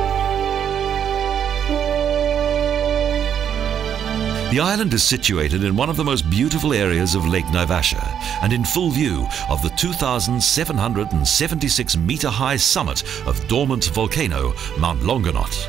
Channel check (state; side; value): quieter; left; 8.8 dB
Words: The island is situated in one of the most beautiful areas of Lake Naivasha and in full view of the 2,776 metre high summit of dormant volcano Mount Longonot.